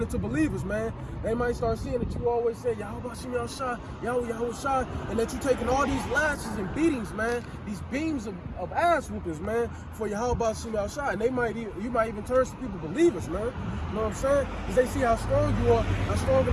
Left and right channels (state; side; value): identical; both; correlation 1.00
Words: into believers, man. They might start seeing that you always say, Yahweh Shai, Yahweh Shai, and that you're taking all these lashes and beatings, man, these beams of ass whoopings, man, for Yahweh Shai. And you might even turn some people believers, man. You know what I'm saying? Because they see how strong you are, how strong in